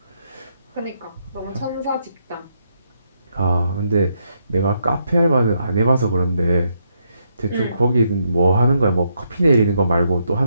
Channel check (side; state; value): both; inverted; correlation -0.78